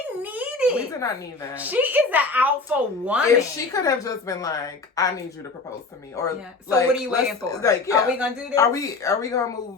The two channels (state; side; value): quieter; right; 3.9 dB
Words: need it. We did not need that. She is the alpha woman. If she could have just been like, I need you to propose to me. Or so what are you waiting for? Are we going to do this? Are we going to